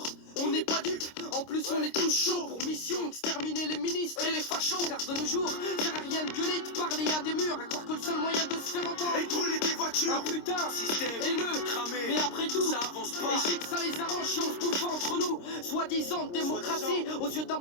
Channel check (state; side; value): late; right; 26 ms